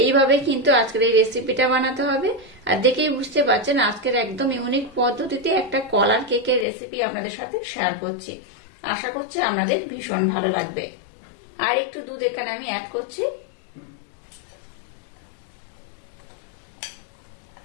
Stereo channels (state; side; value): drops out; right; at 6.7 s